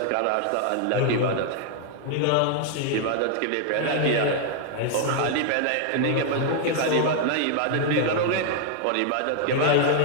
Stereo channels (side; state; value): both; different; correlation 0.00